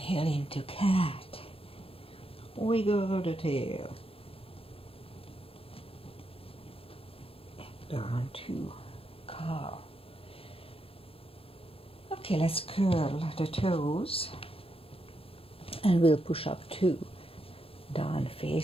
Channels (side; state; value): right; late; 0.27 ms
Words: into cat. Wiggle the tail. Down to cow. Okay, let's curl the toes. And we'll push up 2. Down